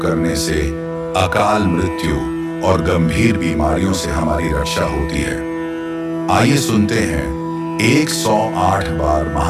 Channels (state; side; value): identical; both; correlation 1.00